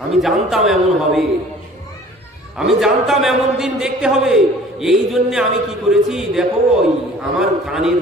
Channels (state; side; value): normal; both; correlation 0.49